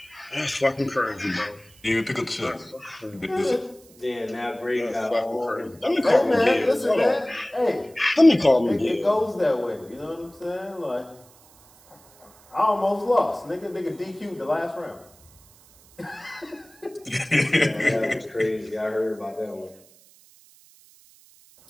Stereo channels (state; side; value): noise; right; hiss, 27 dB below the sound